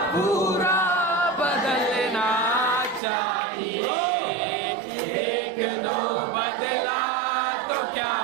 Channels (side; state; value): left; drops out; at 3.0 s